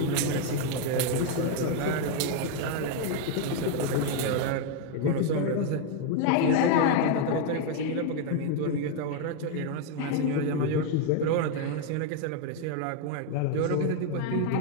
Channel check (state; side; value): different; both; correlation 0.01